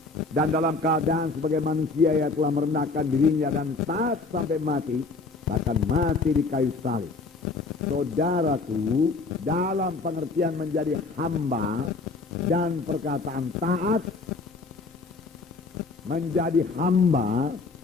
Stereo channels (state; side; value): quieter; right; 3.9 dB